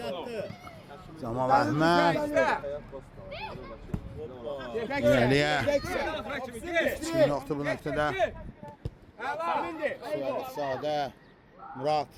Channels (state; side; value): identical; both; correlation 1.00